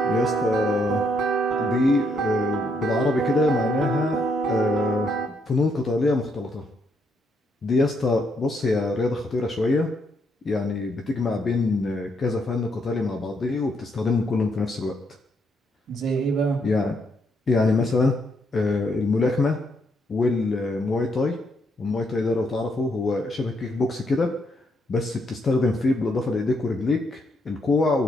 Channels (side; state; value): both; normal; correlation 0.75